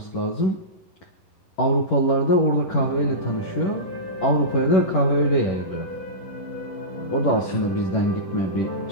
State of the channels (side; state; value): right; late; 11 ms